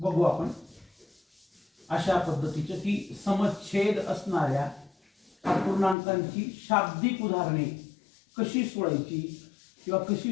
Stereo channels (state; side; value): drops out; right; at 6.0 s